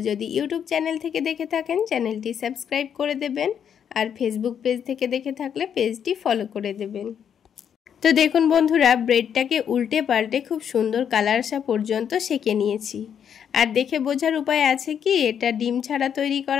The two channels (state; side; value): quieter; right; 8.3 dB